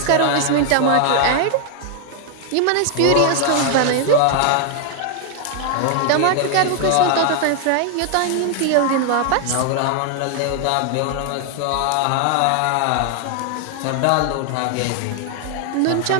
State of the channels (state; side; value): different; both; correlation 0.00